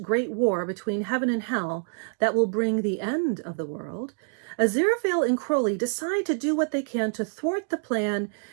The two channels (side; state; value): left; silent; 59 dB below the other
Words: great war between heaven and hell that will bring the end of the world, Aziraphale and Crowley decide to do what they can to thwart the plan